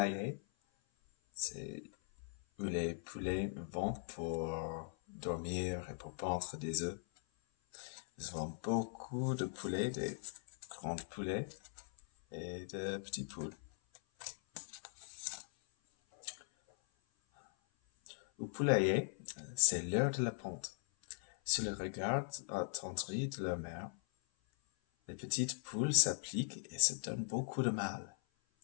C'est où les poulets vont pour dormir et pour pondre des œufs. Nous avons beaucoup de poulets, des grands poulets et de petits poules. Au poulailler, c'est l'heure de la ponte. Sous le regard attendri de leur mère, les petites poules s'appliquent et se donnent beaucoup de mal.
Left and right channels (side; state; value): right; silent; 51 dB below the other